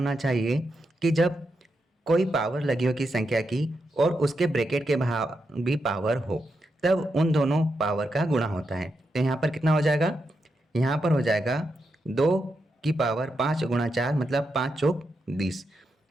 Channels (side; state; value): both; normal; correlation 0.85